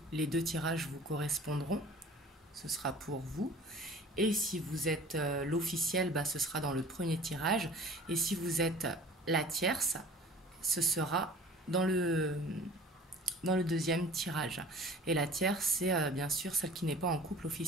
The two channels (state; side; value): normal; both; correlation 0.44